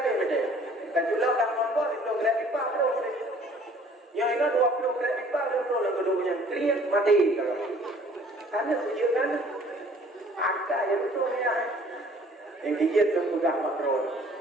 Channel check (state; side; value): normal; both; correlation 0.54